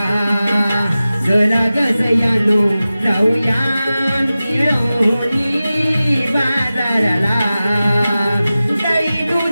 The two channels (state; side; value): inverted; both; correlation -0.95